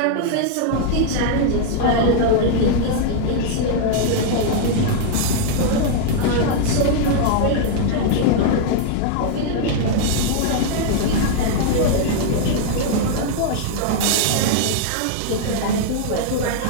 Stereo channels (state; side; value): different; both; correlation -0.01